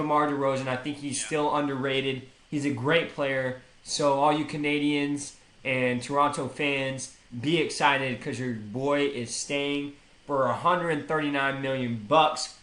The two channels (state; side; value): identical; both; correlation 1.00